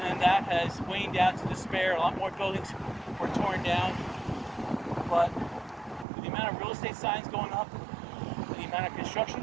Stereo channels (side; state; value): left; drops out; at 6.1 s